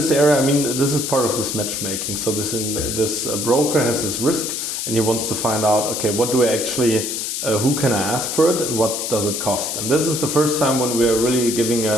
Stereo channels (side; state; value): left; noise; hiss, 3 dB below the sound